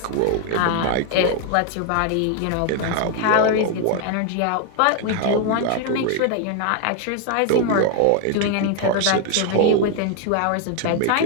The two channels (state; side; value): different; both; correlation 0.00